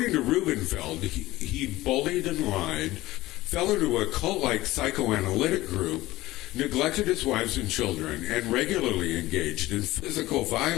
to Rubenfeld, he bullied and lied, fell into a cult-like psychoanalytic group, neglected his wives and children, and regularly engaged in physical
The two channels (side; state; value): right; quieter; 17.7 dB